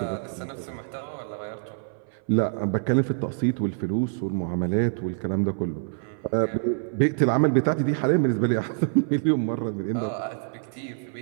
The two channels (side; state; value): left; silent; 59 dB below the other